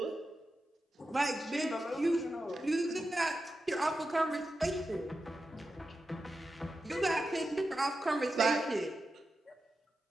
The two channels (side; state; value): both; normal; correlation 0.90